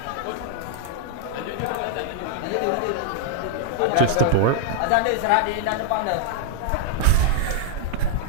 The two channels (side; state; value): both; different; correlation -0.01